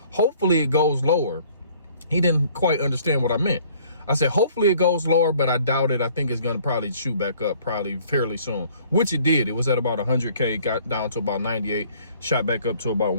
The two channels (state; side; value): inverted; both; correlation -0.57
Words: hopefully it goes lower. He didn't quite understand what I meant. I said, hopefully it goes lower, but I doubt it. I think it's going to probably shoot back up probably fairly soon, which it did. It was at about 100K, got down to about 98, shot back up to about